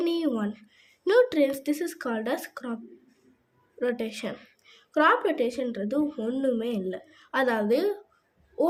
one nutrients. This is called as crop rotation. Crop ரொட்டேஷன்றது ஒன்றுமே இல்லை, அதாவது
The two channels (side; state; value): both; identical; correlation 1.00